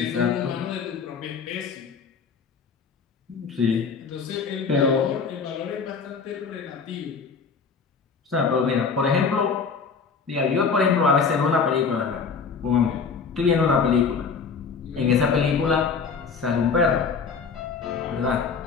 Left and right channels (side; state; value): right; quieter; 5.5 dB